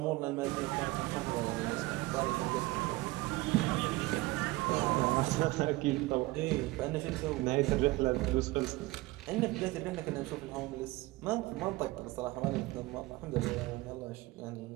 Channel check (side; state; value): left; quieter; 20.3 dB